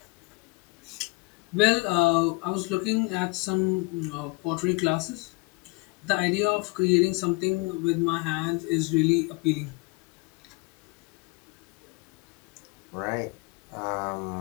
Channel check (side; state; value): right; quieter; 27.2 dB